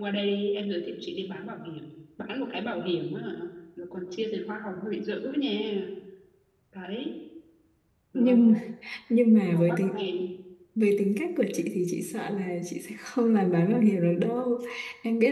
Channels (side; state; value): both; identical; correlation 1.00